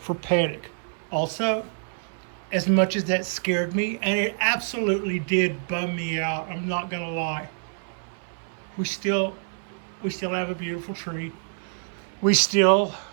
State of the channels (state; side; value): silent; left; 58 dB below the other